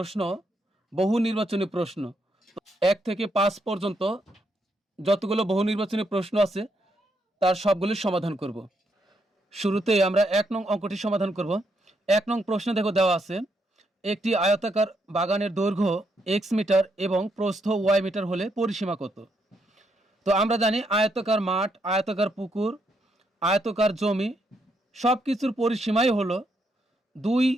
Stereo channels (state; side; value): normal; both; correlation 0.77